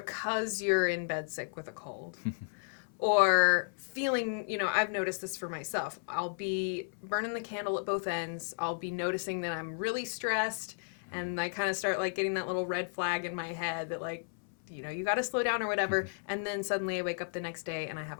you're in bed sick with a cold, or feeling, I've noticed this for myself. I'll be burning the candle at both ends. I'll be noticing that I'm really stressed, and I kind of start getting that little red flag in my head that you got to slow down or whatever. And then suddenly I wake up the next day and I have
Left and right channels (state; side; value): silent; right; 55 dB below the other